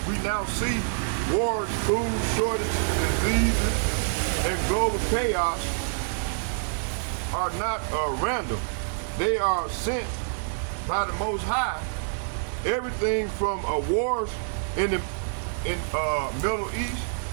now see, wars, food shortages, diseases, and global chaos are not random. They are sent by the Most High. Everything from wars in the Middle East,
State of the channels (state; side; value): silent; left; digital silence